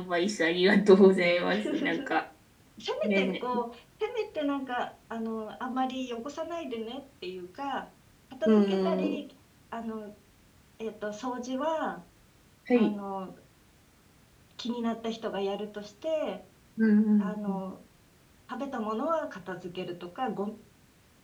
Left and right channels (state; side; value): identical; both; correlation 1.00